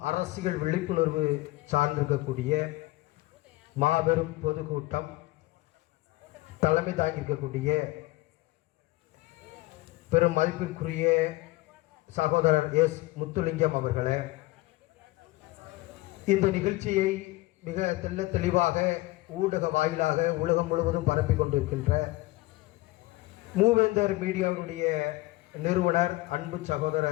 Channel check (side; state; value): right; quieter; 19.5 dB